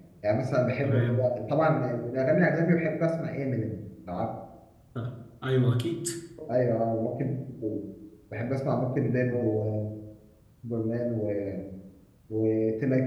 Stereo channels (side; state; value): both; identical; correlation 1.00